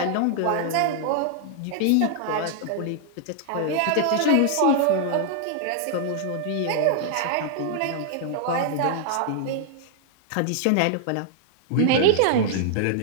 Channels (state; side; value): different; both; correlation -0.01